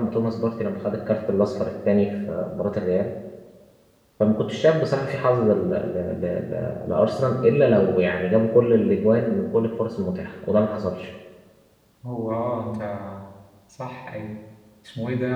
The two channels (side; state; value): both; identical; correlation 1.00